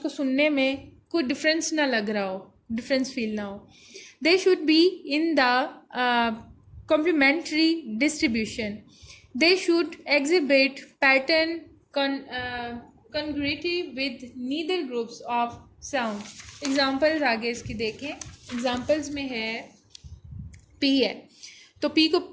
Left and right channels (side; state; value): both; identical; correlation 1.00